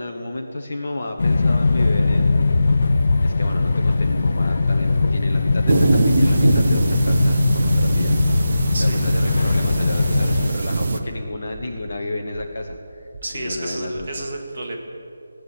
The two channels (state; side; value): inverted; both; correlation -0.92